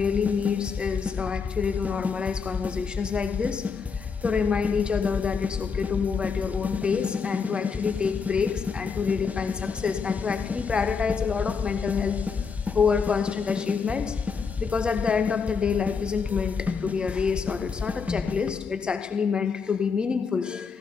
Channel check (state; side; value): quieter; right; 5.5 dB